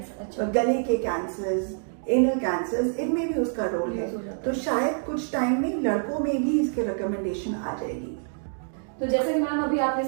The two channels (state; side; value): silent; left; digital silence